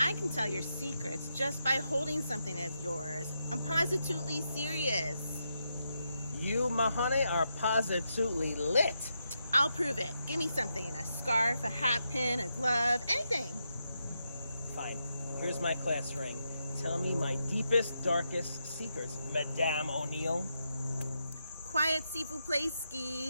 can tell your secrets just by holding something of yours. I'm positively serious. You, my honey, are positively lit. I'll prove it. Give me something. A scarf, a hat pin, a glove, anything. Fine. Here's my class ring. Tell me my deepest, darkest secrets, Madame O'Neill. Quiet, s'il vous plaît,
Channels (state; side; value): inverted; both; correlation -0.84